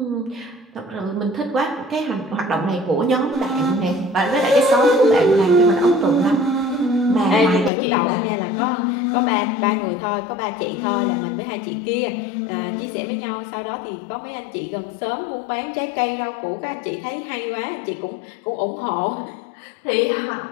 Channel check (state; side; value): drops out; right; at 7.7 s